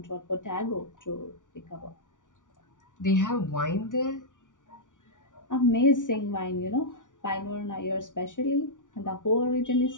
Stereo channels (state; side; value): late; right; 0.87 ms